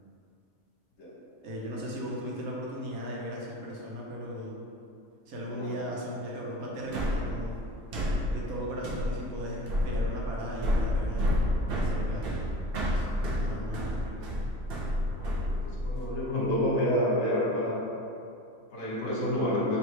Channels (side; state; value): both; normal; correlation 0.35